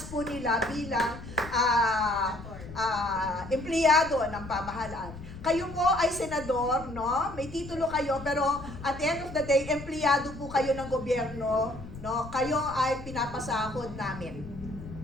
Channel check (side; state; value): left; noise; rumble, 13 dB below the sound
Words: po nila bilang empleyado ng pamahalaan. Kayo po ay senador, no? May titulo kayo, pero at the end of the day, empleyado po kayo ng gobyerno, no? Kayo ay pinapasahod namin.